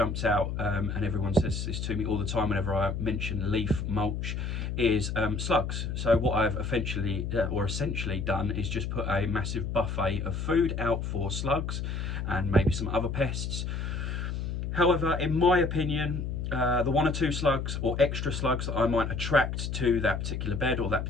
out, and everyone says this to me all the time whenever I mention leaf mulch, is slugs. So what I've essentially done is just put a massive buffet of food out for slugs and maybe some other pests. However, in my opinion, the 1 or 2 slugs or extra slugs that I might attract to that particular bed or that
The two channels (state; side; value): noise; left; hum, 3 dB below the sound